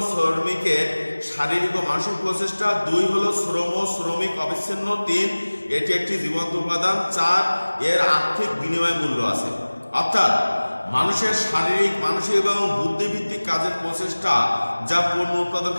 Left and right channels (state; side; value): inverted; both; correlation -1.00